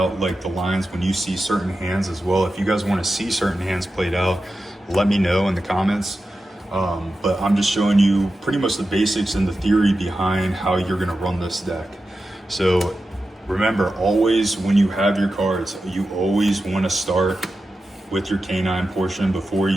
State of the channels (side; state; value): both; normal; correlation 0.92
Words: like the lines when you see certain hands as well. If you guys want to see certain hands played out, let me know in the comments. But I'm just showing you pretty much the basics and the theory behind how you're going to run this deck. So remember, always when you have your cards, you always want to start with your K9 portion before